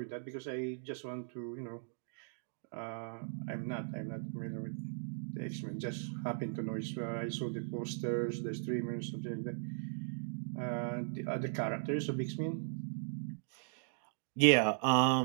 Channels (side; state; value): left; silent; digital silence